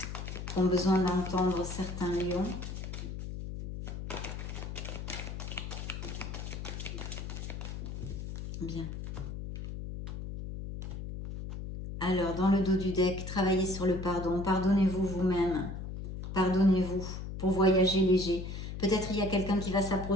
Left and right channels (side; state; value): left; noise; hum, 7 dB below the sound